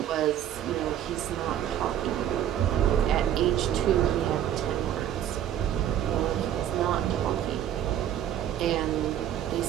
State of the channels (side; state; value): left; quieter; 10.8 dB